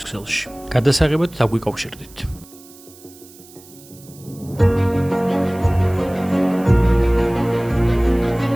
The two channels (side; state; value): right; noise; hiss, 23 dB below the sound